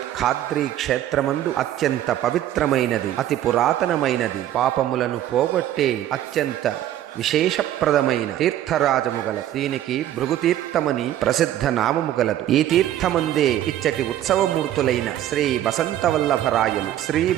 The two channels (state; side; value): quieter; left; 12.3 dB